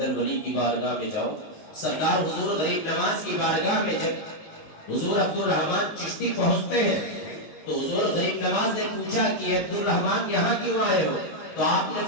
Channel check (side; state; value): right; late; 19 ms